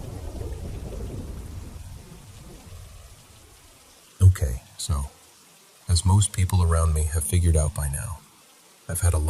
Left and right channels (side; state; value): both; identical; correlation 1.00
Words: Okay, so, as most people around me have figured out by now, I've had a